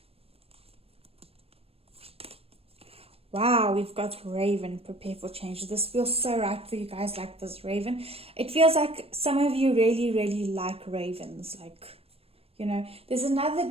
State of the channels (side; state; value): left; late; 0.28 ms